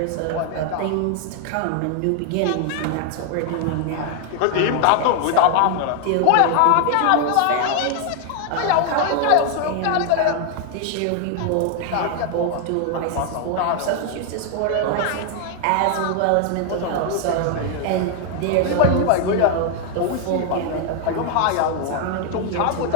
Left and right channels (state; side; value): different; both; correlation 0.00